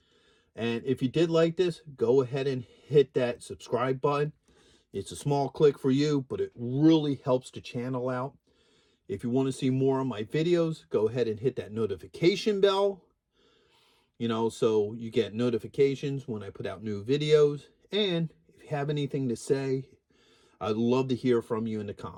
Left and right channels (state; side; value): identical; both; correlation 1.00